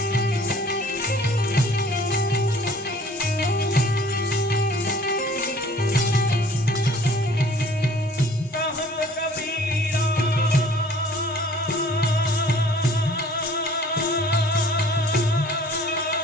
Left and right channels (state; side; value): normal; both; correlation 0.53